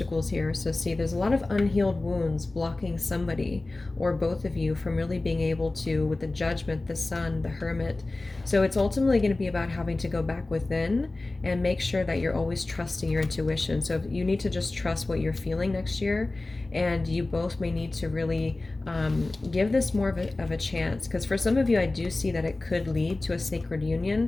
here. So see, there's a lot of unhealed wounds blocking somebody or both of you from really being able to, with the Judgment, the Sun, the Hermit. So it's ultimately going to be about having to go back within and make sure that you're always trusting your intuition. So you need to just trust what you're feeling next year, and you both may need to really give this more of a chance, because for some of you I do see that it could lead to a sacred union,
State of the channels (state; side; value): quieter; right; 3.1 dB